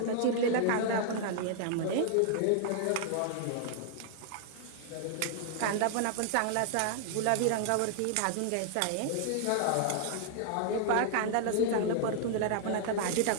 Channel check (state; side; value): different; both; correlation -0.01